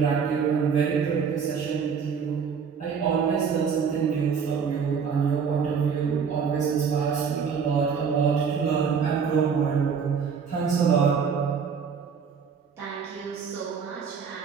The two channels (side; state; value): left; quieter; 6.4 dB